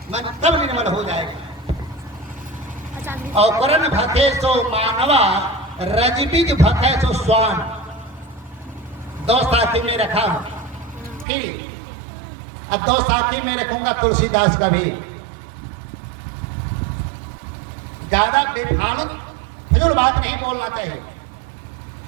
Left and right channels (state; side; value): drops out; left; at 11.2 s